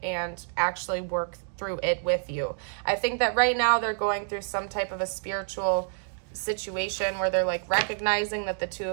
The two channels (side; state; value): left; silent; digital silence